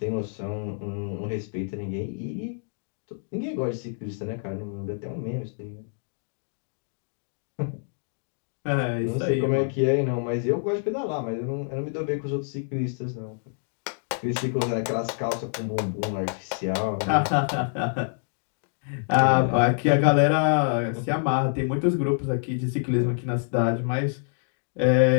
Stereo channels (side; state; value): right; silent; digital silence